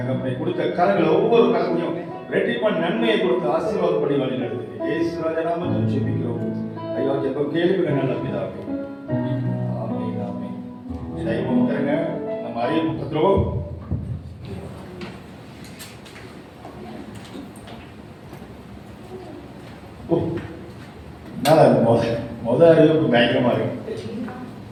கொடுத்த கரங்களை ஒவ்வொரு கரத்தையும் ரெட்டிப்பா நன்மையை கொடுத்து ஆசீர்வாதம் பண்ணி வழி நடத்துங்க இயேசு ராஜா நாமத்தில் ஜெபிக்கிறோம் ஐயா. ஜெபம் கேள்வி நல்ல பிதாவே. ஆமென் ஆமென். தெய்வம் தருங்க நம்ம அறிய புத்தகம் முதல் அறிவுக்கு பயங்கரமா இருக்கு.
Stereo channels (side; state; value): both; identical; correlation 1.00